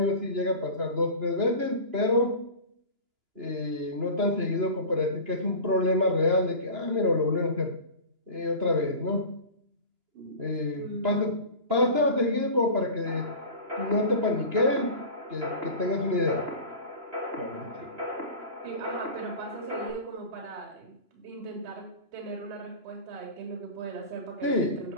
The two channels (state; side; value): late; left; 2.9 ms